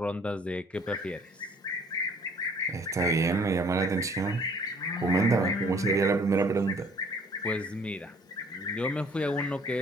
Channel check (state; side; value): normal; both; correlation 0.57